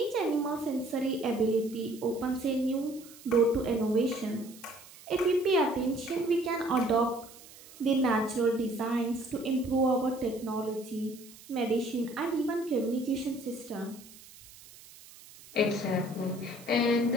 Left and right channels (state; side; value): noise; right; hiss, 20 dB below the sound